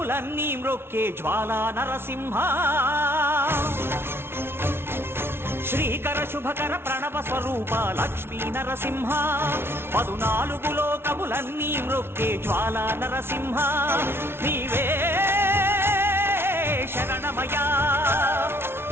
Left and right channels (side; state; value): left; late; 0.12 ms